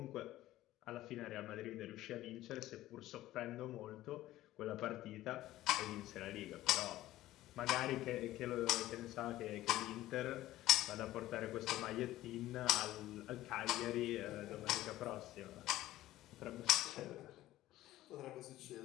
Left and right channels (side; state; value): right; quieter; 15.3 dB